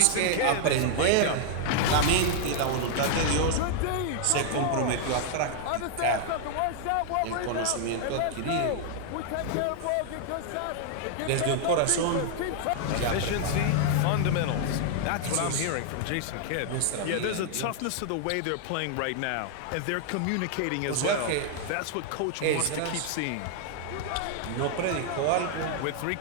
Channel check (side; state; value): both; different; correlation 0.00